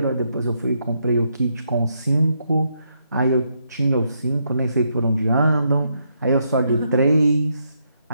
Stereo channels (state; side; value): inverted; both; correlation -0.79